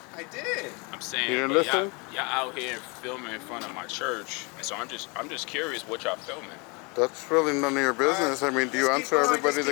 I did. I'm saying, You didn't but listen? Y'all out here filming in front of my church, and so I'm just curious what y'all filming. That's really none of your business. I mean, do you answer everybody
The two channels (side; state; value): right; quieter; 29.9 dB